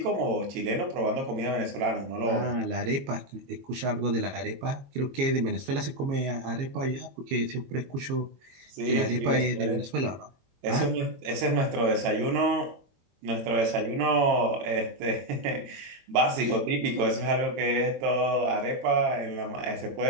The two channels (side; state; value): left; late; 22 ms